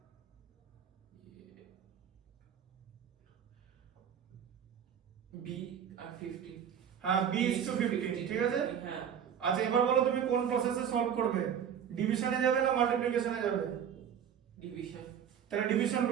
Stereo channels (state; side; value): quieter; left; 8.5 dB